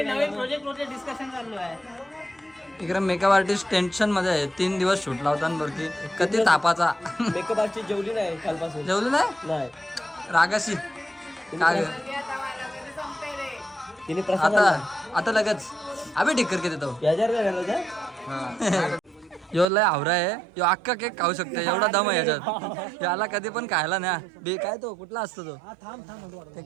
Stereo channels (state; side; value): drops out; left; at 19.7 s